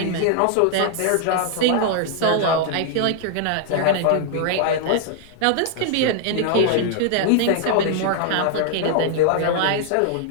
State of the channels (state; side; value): different; both; correlation 0.00